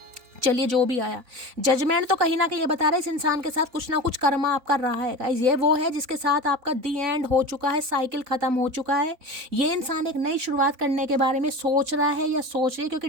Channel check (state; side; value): late; left; 3.9 ms